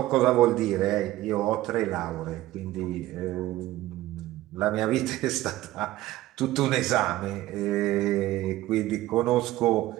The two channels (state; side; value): quieter; left; 16.1 dB